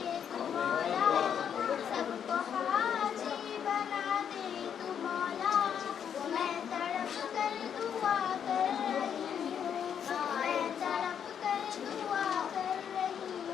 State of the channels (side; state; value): right; quieter; 8.3 dB